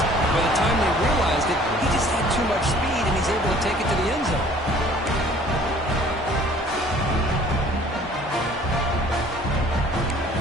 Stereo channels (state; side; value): normal; both; correlation 0.53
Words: By the time they realized it, he just had too much speed, and he's able to take it to the end zone.